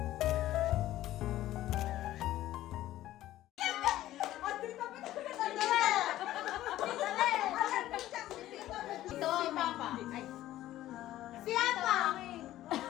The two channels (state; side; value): quieter; right; 14.3 dB